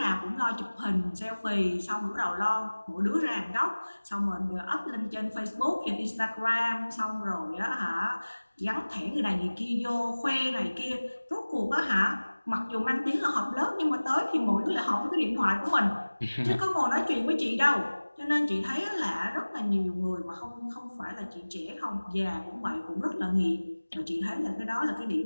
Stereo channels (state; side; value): inverted; both; correlation -1.00